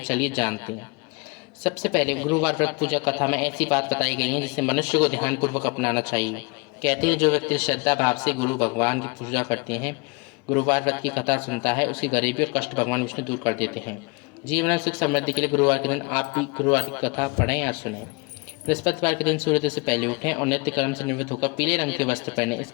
जानते हैं। सबसे पहले गुरुवार व्रत पूजा कथा में ऐसी बात बताई गई है जिसे मनुष्य को ध्यानपूर्वक अपनाना चाहिए। कहते हैं जो व्यक्ति श्रद्धा भाव से गुरु भगवान की पूजा करते हैं, गुरुवार व्रत की कथा सुनता है, उसकी गरीबी और कष्ट भगवान विष्णु दूर कर देते हैं। जीवन में सुख समृद्धि के लिए गुरुवार के दिन आप भी गुरुवार की कथा पढ़ें या सुनें। बृहस्पतिवार के दिन सूर्योदय से पहले उठें और नित्य कर्म से निवृत्त होकर पीले रंग के वस्त्र पहनें।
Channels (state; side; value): quieter; right; 28.8 dB